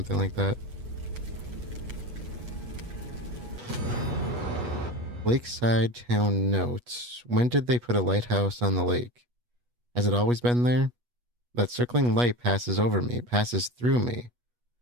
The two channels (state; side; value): late; left; 8.3 ms